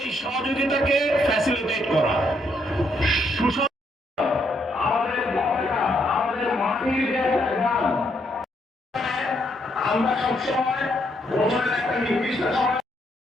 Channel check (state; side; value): normal; both; correlation 0.74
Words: সহযোগিতাকে ফ্যাসিলিটেট করা, আমাদের মাটির যে গান, আমরা সবসময় বছরের একটা নির্দিষ্ট সময়